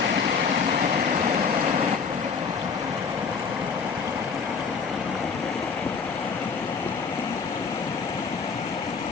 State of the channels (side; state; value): right; quieter; 5.6 dB